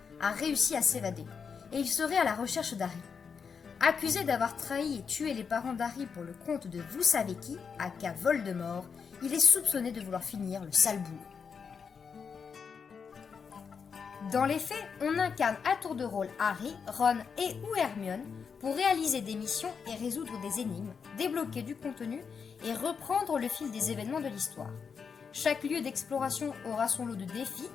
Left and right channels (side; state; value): right; quieter; 6.1 dB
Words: a réussi à s'évader, et il serait à la recherche d'Harry. Accusé d'avoir trahi et tué les parents d'Harry pour le compte de vous savez qui, aka Voldemort, il est soupçonné de vouloir finir le sale boulot. Dans les faits, on incarne à tour de rôle Harry, Ron et ou Hermione pour réaliser des missions et résoudre des énigmes, débloquer du contenu et reprendre le fil des événements de l'histoire. Chaque lieu d'exploration aura son lot de défis